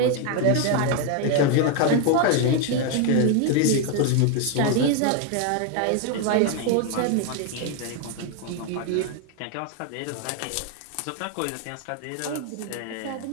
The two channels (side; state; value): both; different; correlation 0.01